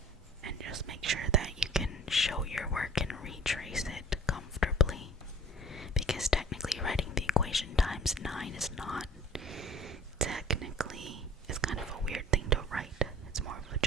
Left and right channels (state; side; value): normal; both; correlation 0.48